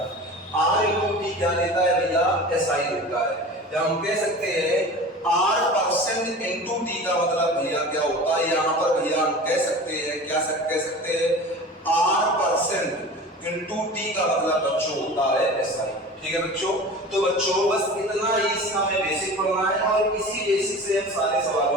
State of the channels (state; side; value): normal; both; correlation 0.36